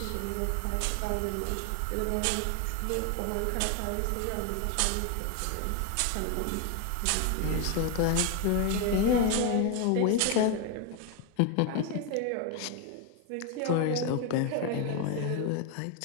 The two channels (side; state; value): both; different; correlation 0.01